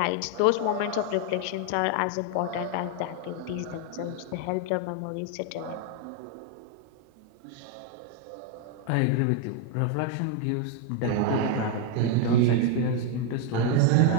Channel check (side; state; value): both; different; correlation 0.01